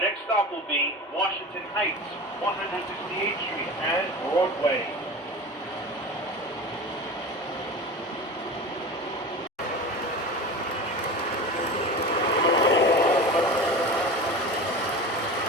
stop will be Washington Heights, 168th Street and Broadway.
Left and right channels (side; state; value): both; normal; correlation 0.31